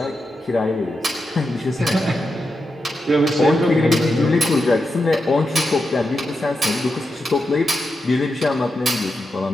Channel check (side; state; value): both; normal; correlation 0.87